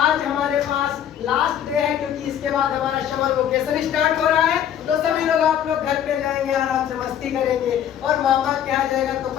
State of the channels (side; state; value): right; quieter; 9.9 dB